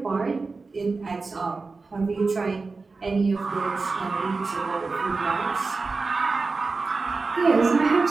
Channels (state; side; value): quieter; left; 4.0 dB